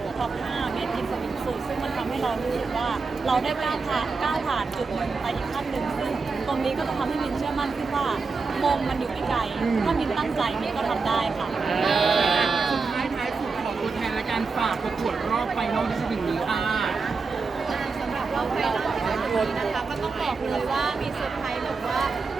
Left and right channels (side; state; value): left; quieter; 4.5 dB